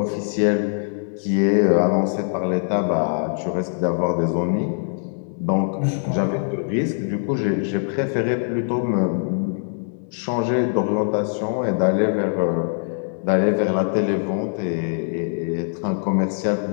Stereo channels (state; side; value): silent; right; digital silence